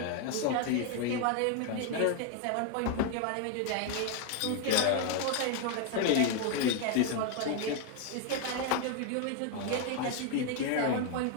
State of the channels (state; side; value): different; both; correlation 0.01